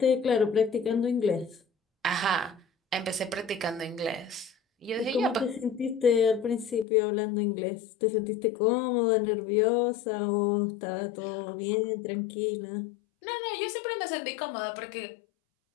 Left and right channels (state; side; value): drops out; right; at 6.9 s